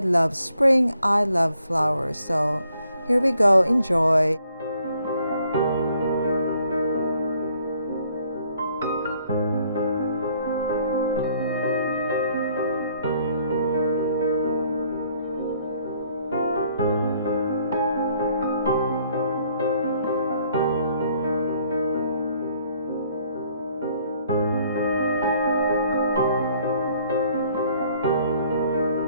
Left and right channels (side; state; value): both; inverted; correlation -0.65